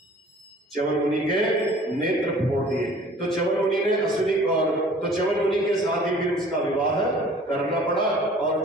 च्यवन मुनि के नेत्र फोड़ दिए। तो च्यवन मुनि ने च्यवन मुनि के साथ ही फिर उसका विवाह करना पड़ा और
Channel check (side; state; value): both; normal; correlation 0.50